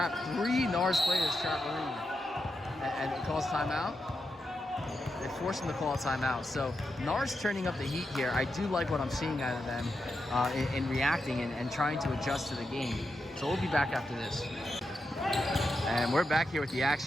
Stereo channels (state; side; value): normal; both; correlation 0.86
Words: 3 Narszz players, trap Arib. And it calls timeout. They force him to call a timeout. So Narszz turning up the heat here. I do like what I'm seeing out of them in reacting and trying to adjust to the game. So we'll be back after this. And we're back here with the